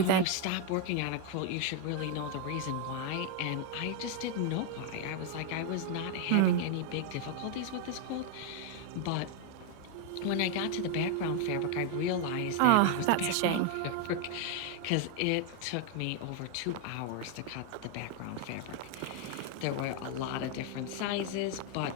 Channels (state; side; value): different; both; correlation 0.00